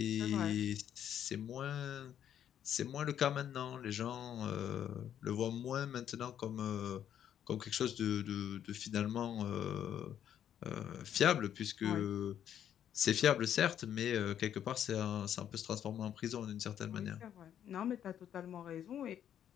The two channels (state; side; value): quieter; right; 9.9 dB